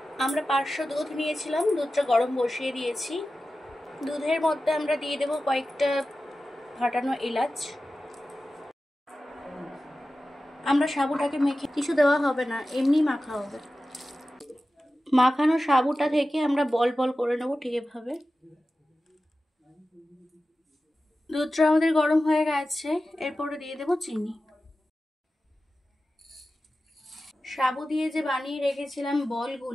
আমরা 500 দুধ নিয়েছিলাম, দুধটা গরম বসিয়ে দিয়েছি। দুধের মধ্যে আমরা দিয়ে দেবো কয়েকটা ফাটানো এলাচ। আমরা সাবুটাকে মেখে কিছু দেওয়া হবে না, এমনি মাখা হবে। মাখানো সাবুটা থেকে আমরা বল বল করে নেব ঠিক এভাবে। দুধটা আমাদের গরম হয়ে গেছে, এরপরে দিয়ে দেব চিনি। সাবু দিয়ে যে বানিয়ে রেখেছিলাম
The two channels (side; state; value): both; normal; correlation 0.94